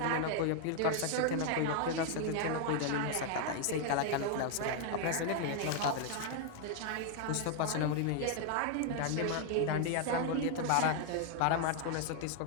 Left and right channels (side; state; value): both; different; correlation 0.00